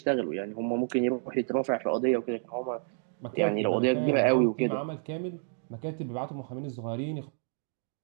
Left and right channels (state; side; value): silent; left; digital silence